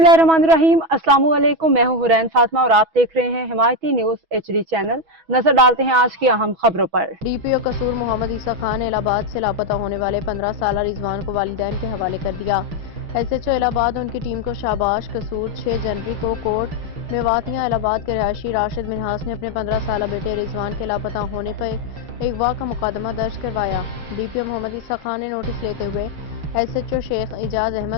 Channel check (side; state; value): left; late; 6.1 ms